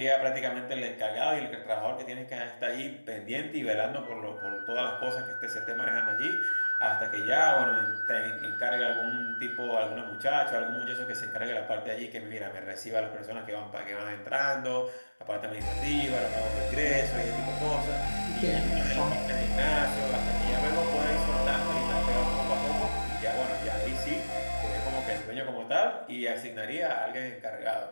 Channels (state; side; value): inverted; both; correlation -1.00